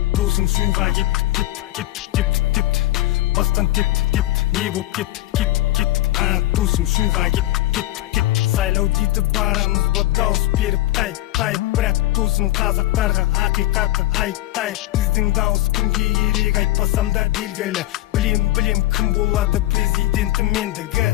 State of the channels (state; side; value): quieter; right; 15.9 dB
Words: Досым шуға кеттік. Бастан тепті. Не боп кеттік. Досым шуға кеттік. Сайлау дейді барамыз ба дауыс беріп тайып. Бірақ досым қазақтарға ақиқатты айтайық. Біздің дауыс кімге керек айтпасам да белгілі. Білем кім болады президентім